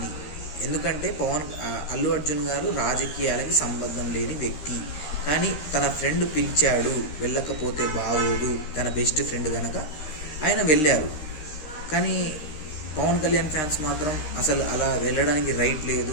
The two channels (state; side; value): late; right; 13 ms